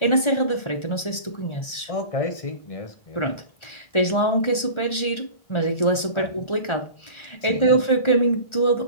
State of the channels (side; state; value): right; late; 1.4 ms